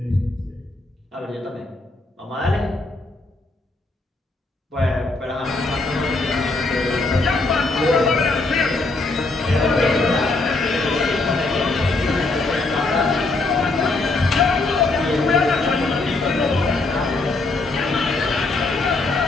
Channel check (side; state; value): right; quieter; 3.3 dB